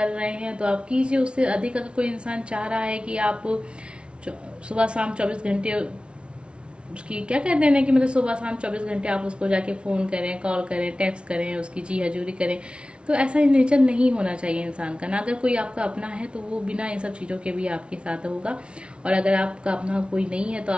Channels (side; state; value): left; late; 0.058 ms